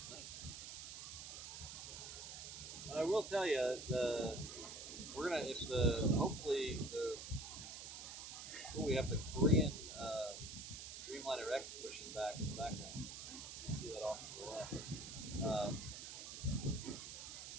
nice. But I will tell you, we're gonna if the hopefully the we have the Korean Dreamliner X pushing back in the background. You can see that off to the left.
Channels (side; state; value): right; noise; hiss, 9 dB below the sound